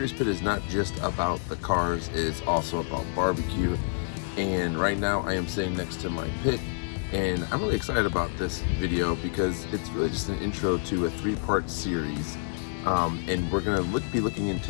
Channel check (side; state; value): right; silent; digital silence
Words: Pit is not just about the cars, it's also about barbecue. And right now I am sitting next to my pit, and I'm really excited about this video because it's really just an intro to a 3-part series. And we're going to be looking